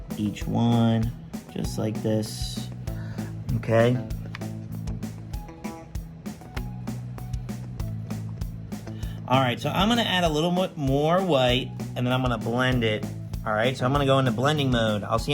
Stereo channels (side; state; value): both; identical; correlation 1.00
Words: each one, just like this, okay? All right, so I'm gonna add a little bit more white and then I'm gonna blend it. All right, so I'm gonna go into blending mode. I'll see